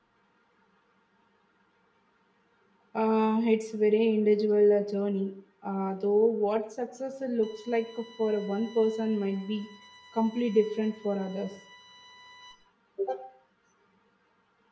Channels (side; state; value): both; identical; correlation 1.00